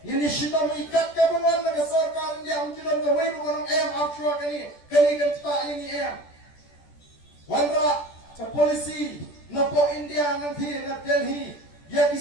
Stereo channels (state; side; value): late; right; 14 ms